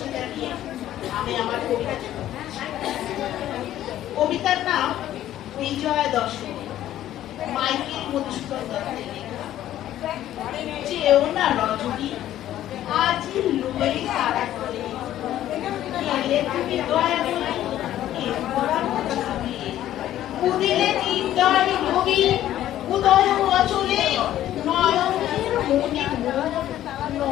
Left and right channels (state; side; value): quieter; right; 12.7 dB